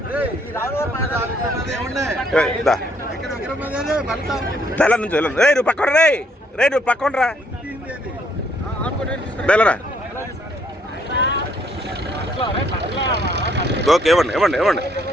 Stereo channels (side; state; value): both; normal; correlation 0.68